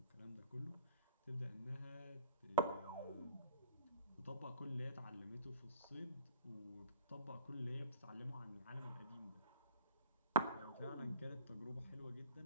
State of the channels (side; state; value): both; inverted; correlation -0.41